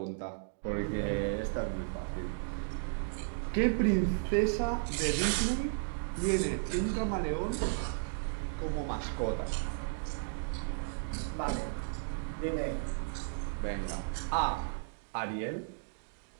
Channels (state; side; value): silent; left; digital silence